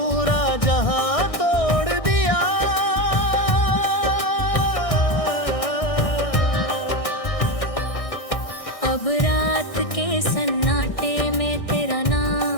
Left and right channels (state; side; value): late; right; 1.6 ms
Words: जहां तोड़ दिया। अब रात के सन्नाटे में तेरा